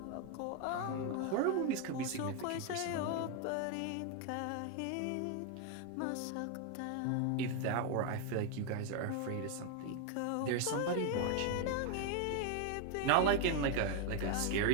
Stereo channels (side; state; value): both; different; correlation 0.01